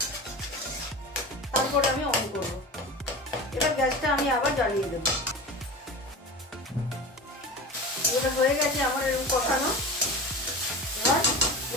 তারপরে আমি অন করব। এবার গ্যাসটা আমি আবার জ্বালিয়ে দেব। এটা হয়ে গেছে আমার এরকম কষানো।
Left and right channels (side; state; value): both; normal; correlation 0.31